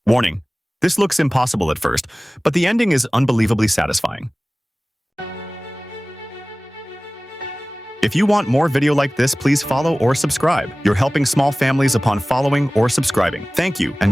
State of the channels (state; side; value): normal; both; correlation 0.98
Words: Warning. This looks impossible at first, but the ending is unbelievably satisfying. If you want more video like this, please follow or subscribe. You're helping small families upon following or subscribing. Thank you,